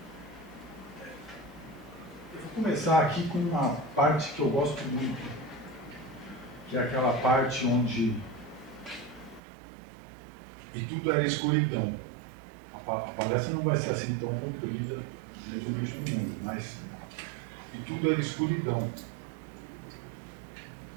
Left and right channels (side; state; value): left; drops out; at 9.4 s